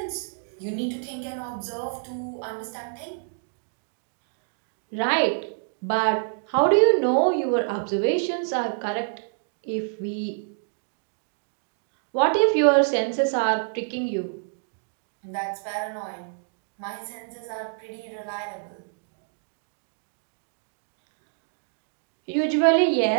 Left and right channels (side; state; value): left; silent; digital silence